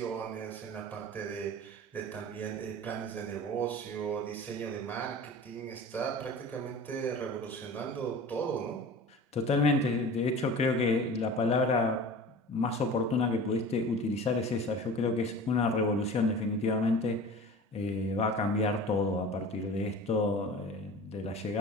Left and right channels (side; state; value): both; normal; correlation 0.38